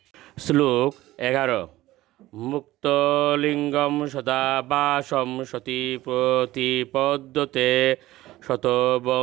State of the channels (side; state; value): left; quieter; 16.6 dB